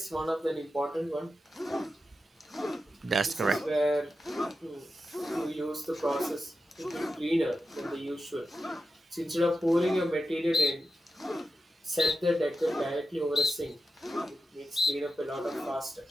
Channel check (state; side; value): normal; both; correlation 0.91